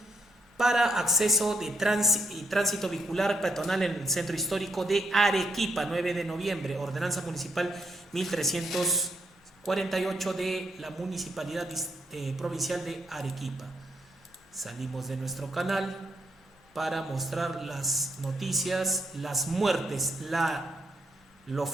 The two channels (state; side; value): normal; both; correlation 0.76